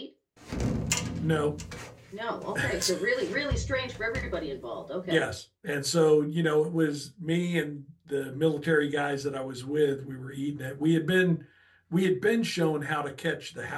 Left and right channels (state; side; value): identical; both; correlation 1.00